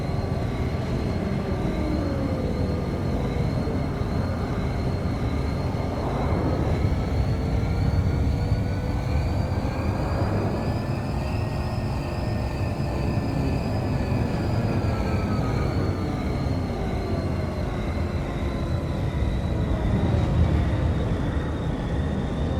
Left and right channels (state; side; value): identical; both; correlation 1.00